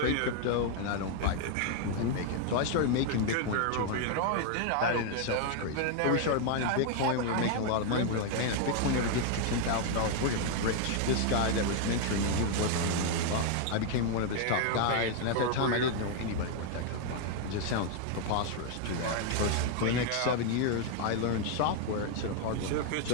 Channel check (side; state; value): both; different; correlation 0.00